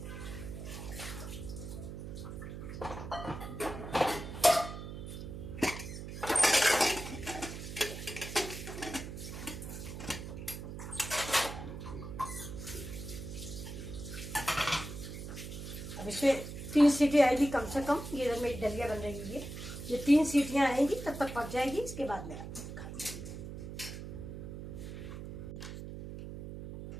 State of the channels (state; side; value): noise; right; hum, 8 dB below the sound